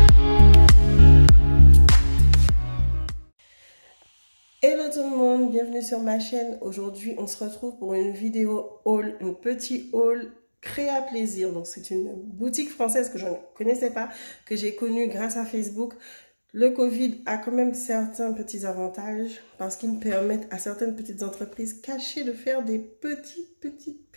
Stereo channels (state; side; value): inverted; both; correlation -1.00